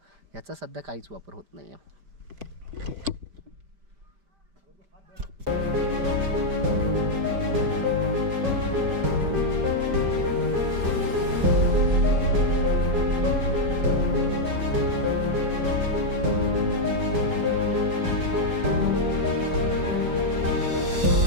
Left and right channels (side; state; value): left; late; 5.1 ms